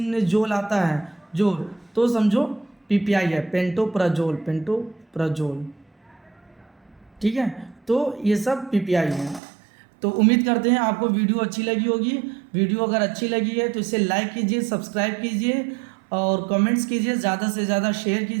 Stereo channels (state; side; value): drops out; left; at 9.4 s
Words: में जोल आता है, जोल, तो समझो PPI है, पेंटोप्राजोल। ठीक है। तो ये सब PPI है। तो उम्मीद करते हैं आपको वीडियो अच्छी लगी होगी। वीडियो अगर अच्छी लगी है तो इसे लाइक कीजिए, सब्सक्राइब कीजिए और कमेंट्स कीजिए, ज़्यादा से ज़्यादा शेयर